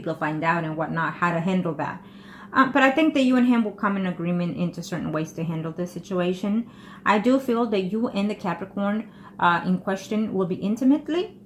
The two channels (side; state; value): both; identical; correlation 1.00